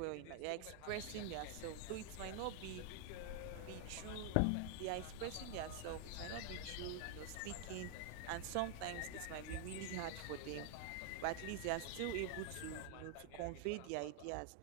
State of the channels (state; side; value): different; both; correlation 0.00